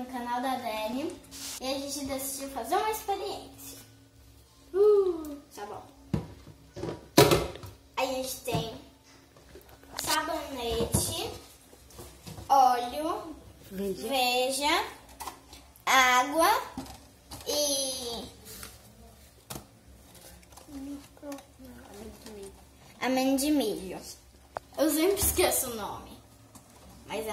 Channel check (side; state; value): both; identical; correlation 1.00